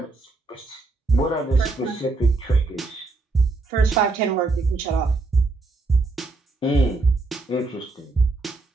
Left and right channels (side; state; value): left; quieter; 3.5 dB